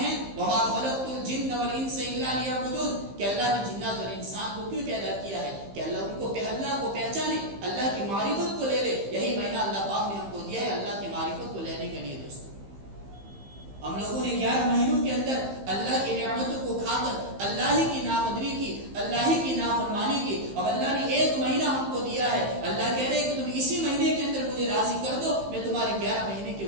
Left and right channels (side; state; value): left; late; 15 ms